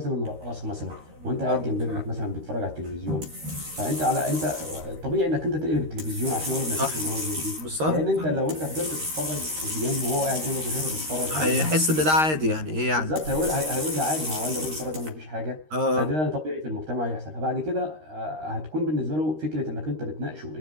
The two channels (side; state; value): left; late; 13 ms